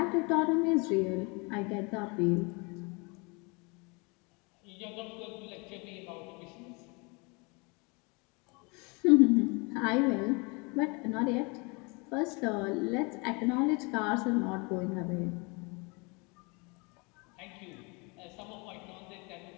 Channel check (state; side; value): quieter; right; 29.8 dB